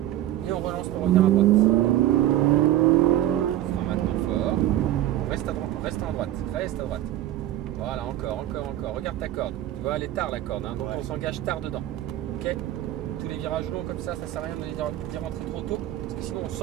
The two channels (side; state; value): left; quieter; 13.5 dB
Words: Et on relance pour revenir à droite. Frein maintenant fort. Reste à droite, reste en droite. Reste à droite. Voilà, encore. Regarde ta corde. Tu vois, elle est tard la corde, hein, donc on s'engage tard dedans. Ok? Tous les virages longs comme ça sert à rien d'y rentrer trop tôt, parce que sinon on